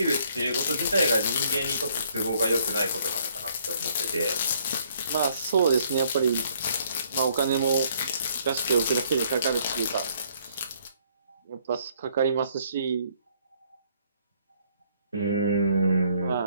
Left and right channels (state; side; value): inverted; both; correlation -0.65